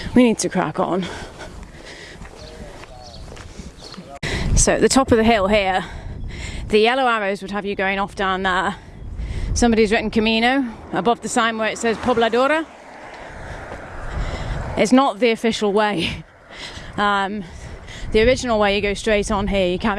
we need to crack on. So at the top of the hill here, the yellow arrows would have you going off down there. Somebody's written Camino above the sign where it says Pobladora. It's not the official way. The original way, you go straight on here, you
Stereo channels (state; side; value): identical; both; correlation 1.00